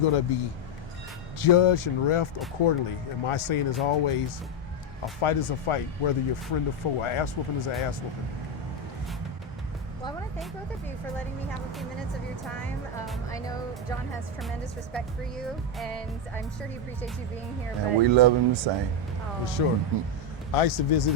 be judged and refed accordingly. And my saying is always, a fight is a fight, whether you're friend or foe. An ass whooping is an ass whooping. Well, I want to thank both of you for letting me have a few minutes of your time. I know John has tremendous respect for you, and I'm sure he appreciates you being here. And we love him the same. For sure. I used to visit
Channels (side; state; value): both; normal; correlation 0.06